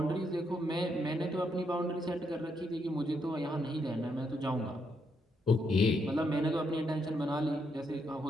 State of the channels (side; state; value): both; normal; correlation 0.77